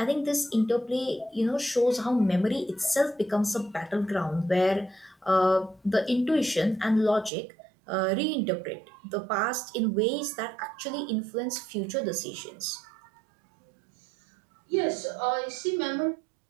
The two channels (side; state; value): left; drops out; at 7.3 s